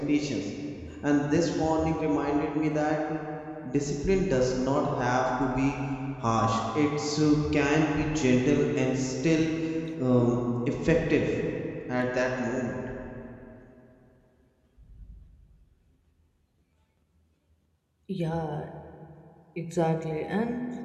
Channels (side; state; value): both; identical; correlation 1.00